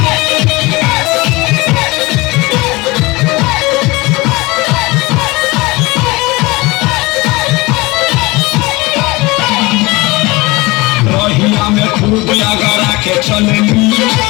रहिया में खूब लगा के चलनी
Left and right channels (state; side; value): quieter; right; 22.9 dB